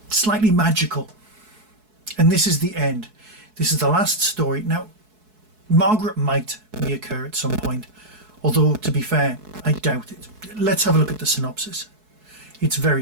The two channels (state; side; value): late; left; 4.7 ms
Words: slightly magical. And this is the end. This is the last story. Now, Margaret might reoccur at some point, although, to be fair, I doubt it. Let's have a look at the synopsis. It's very